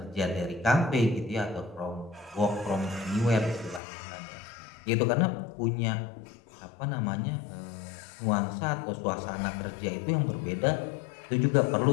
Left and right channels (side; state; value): right; drops out; at 3.8 s